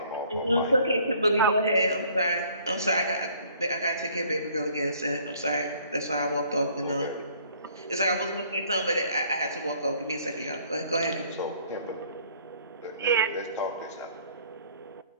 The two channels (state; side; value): inverted; both; correlation -0.58